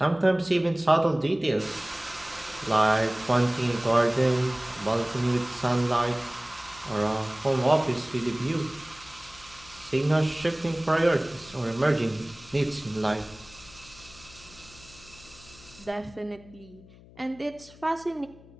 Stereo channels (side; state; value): left; noise; hum, 22 dB below the sound